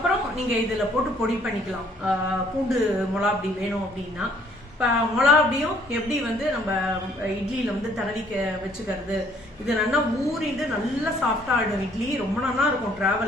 நீங்கள் இதில் போட்டு பொடி பண்ணிக்கலாம். பூண்டு மிளகாப்பொடி வேணும் அப்படின்னா. இப்போ மிளகாப்பொடியும் எப்படி வந்து நம்ம இட்லியில் வந்து தடவிக்க வச்சுக்கிறது, இது நல்லா ஊறிட்டு நல்லா சாஃப்டாக ஆகிடும் இட்லி. ரொம்ப நல்லா இருக்கும்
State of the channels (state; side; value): normal; both; correlation 0.62